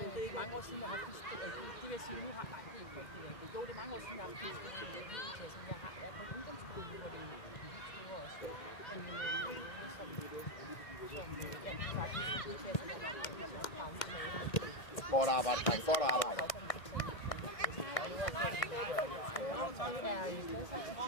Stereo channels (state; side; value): late; right; 1.6 ms